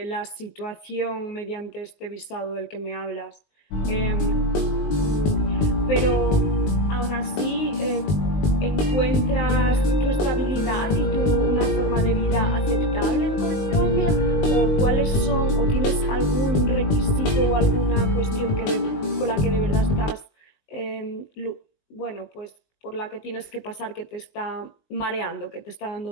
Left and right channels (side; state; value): right; late; 19 ms